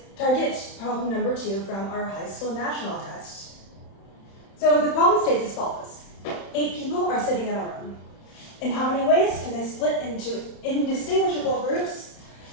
Target problem number 2 from our high school national test. So the problem states as follows. 8 people are sitting in a room. In how many ways can they split into indistinguishable groups?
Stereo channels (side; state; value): right; late; 31 ms